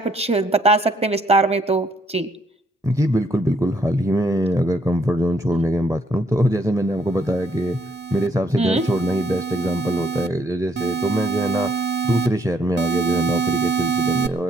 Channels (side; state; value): both; normal; correlation 0.69